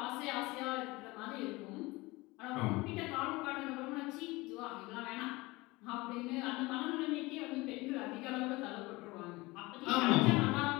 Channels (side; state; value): right; quieter; 22.1 dB